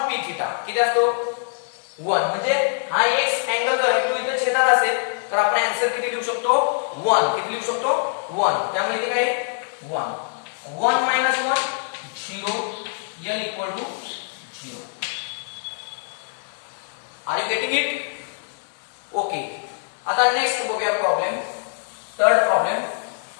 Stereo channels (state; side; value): silent; right; digital silence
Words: p theta किती असतो 1. म्हणजे हा x अँगल जो आहे तो इथे छेदात असेल तर आपण आन्सर किती लिहू शकतो 1. किती लिहू शकतो 1. त्यामुळे इथे काय 1 minus 1 0 l equal to 0. Are you getting it? Okay, आता नेक्स्ट बघूया problem. Third problem.